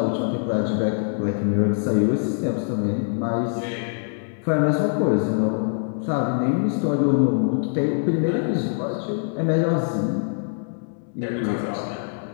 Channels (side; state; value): right; silent; 62 dB below the other